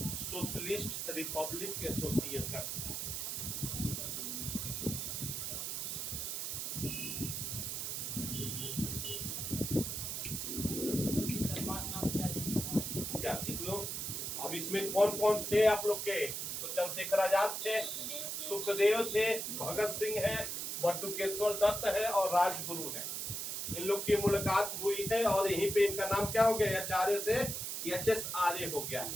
सोशलिस्ट रिपब्लिक एसोसिएशन। इसमें कौन कौन थे आप लोग के? तो चंद्रशेखर आजाद थे, सुखदेव थे, भगत सिंह है, बटुकेश्वर दत्त है और राजगुरु है। इन लोग की मुलाकात हुई है और यहीं पे इनका नाम क्या हो गया? आचार्य से एच एस आर्य हो गया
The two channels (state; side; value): noise; right; hiss, 3 dB below the sound